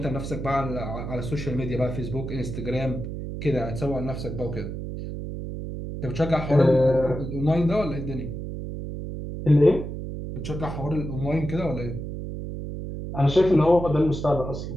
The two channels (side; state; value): right; noise; hum, 7 dB below the sound